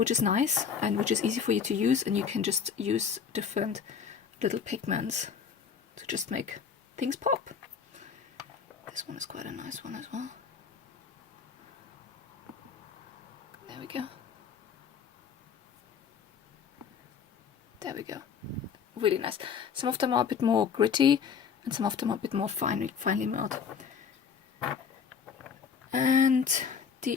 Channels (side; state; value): right; quieter; 6.6 dB